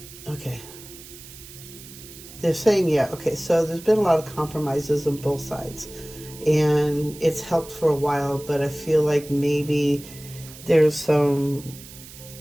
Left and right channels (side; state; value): right; noise; hiss, 17 dB below the sound